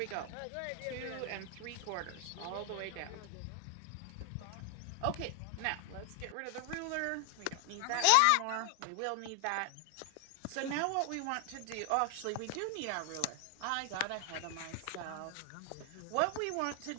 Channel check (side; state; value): both; different; correlation 0.00